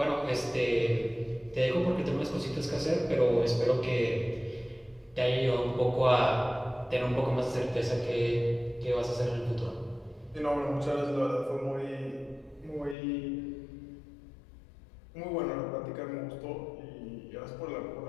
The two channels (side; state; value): right; drops out; at 13.0 s